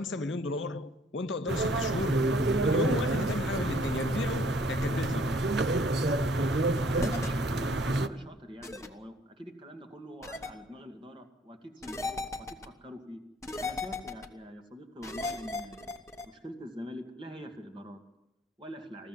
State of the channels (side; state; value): both; normal; correlation 0.59